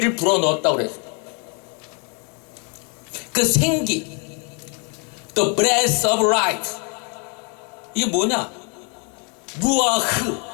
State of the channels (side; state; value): right; quieter; 36.1 dB